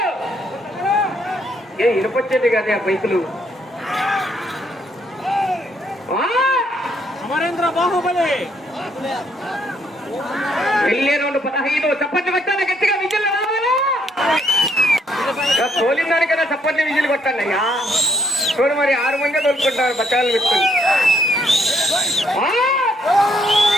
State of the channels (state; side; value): normal; both; correlation 0.71